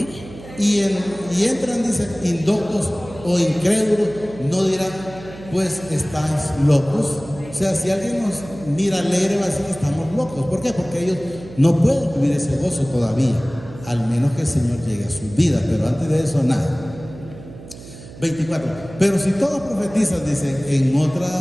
y entran, dice, indoctos o incrédulos, no dirán, pues estáis locos. O sea, si alguien nos mira alegre, va a decir que estamos locos. ¿Por qué? Porque ellos no pueden vivir ese gozo todavía, al menos que el Señor llegue a su vida, pero antes de eso, nada. 24. Pero si todos profetizan, dice,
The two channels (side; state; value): right; noise; hum, 16 dB below the sound